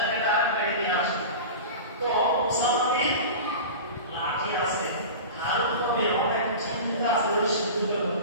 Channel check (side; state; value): both; inverted; correlation -0.31